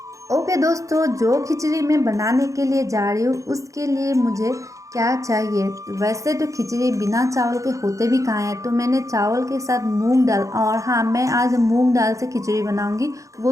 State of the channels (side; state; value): left; late; 0.16 ms